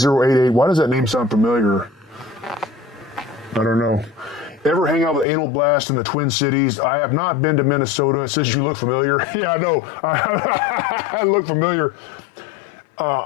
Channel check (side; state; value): right; drops out; at 5.2 s